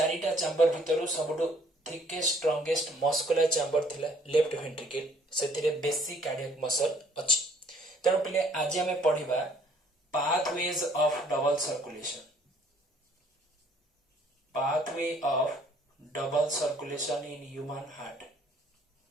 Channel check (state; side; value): normal; both; correlation 0.60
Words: चैम्बर भितरु सबटो थिकेस्ट स्ट्रांगेस्ट मस्कुलर चैम्बर थिला लेफ्ट वेंट्रिकल, सेतिरे बेसी कार्डियक मसल अछि। तेणु पिले आज हमें पढिबा pathways of double circulation, pathway of double circulation in human heart,